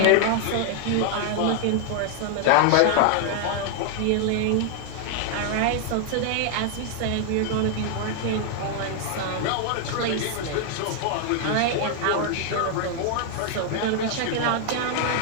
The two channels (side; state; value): both; different; correlation 0.00